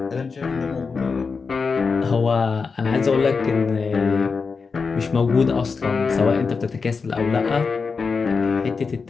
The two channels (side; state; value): right; quieter; 5.0 dB